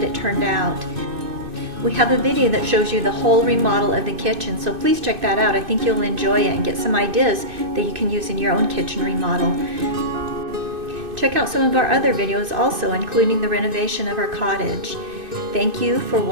it turned out. We have a video that shows you the whole remodel of the kitchen, so please check that out. I think you'll enjoy it and get some ideas that you can use in your own kitchen remodel. Check out some of our other videos also, including the renovation of our cottage. Thank you for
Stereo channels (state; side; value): late; left; 2.6 ms